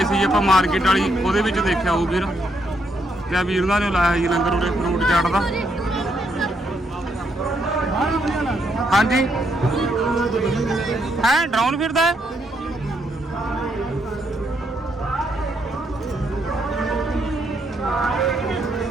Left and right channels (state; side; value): normal; both; correlation 0.76